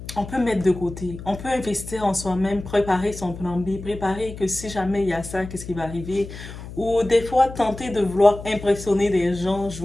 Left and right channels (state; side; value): noise; left; hum, 12 dB below the sound